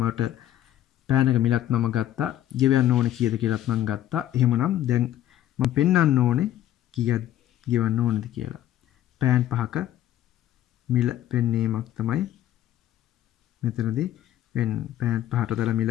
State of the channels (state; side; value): quieter; right; 12.6 dB